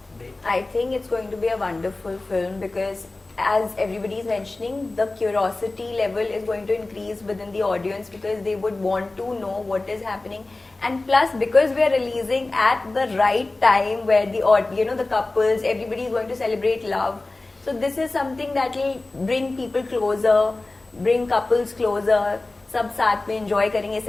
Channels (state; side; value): quieter; right; 3.1 dB